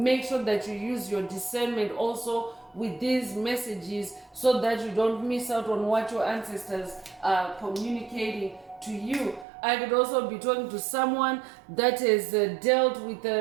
sure that you use your discernment also with these messages, so that you don't miss out on what your ancestors are communicating to you. I could also be talking to someone that has dealt with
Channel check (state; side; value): drops out; left; at 9.5 s